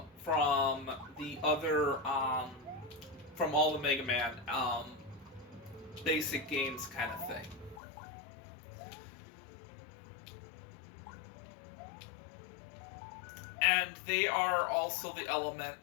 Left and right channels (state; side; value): drops out; right; at 7.8 s